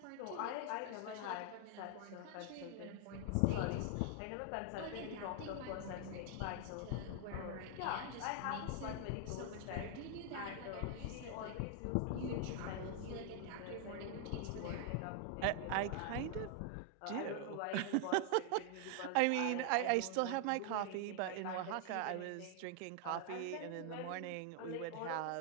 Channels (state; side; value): different; both; correlation 0.00